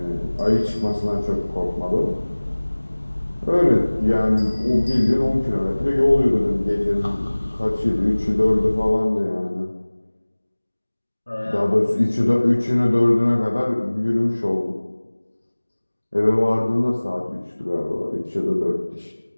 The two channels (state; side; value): inverted; both; correlation -1.00